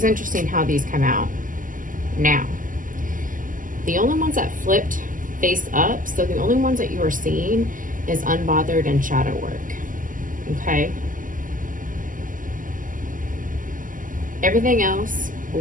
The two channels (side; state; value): left; late; 0.38 ms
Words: interesting how these come out. Now, the only ones that flipped face up, so the only ones that you are seeing is unbothered and shadow work. Okay? Everything else